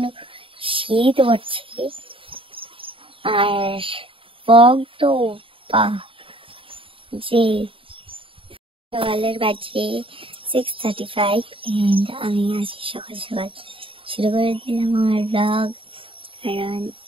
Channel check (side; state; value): left; late; 0.26 ms